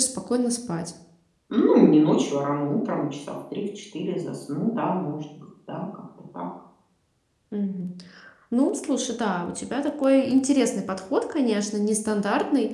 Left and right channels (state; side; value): identical; both; correlation 1.00